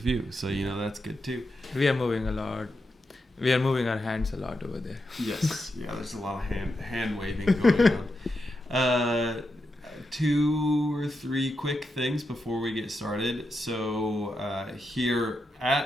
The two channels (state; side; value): normal; both; correlation 0.86